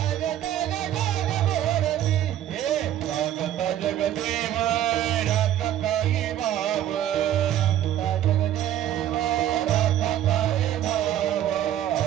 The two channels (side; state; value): left; quieter; 11.7 dB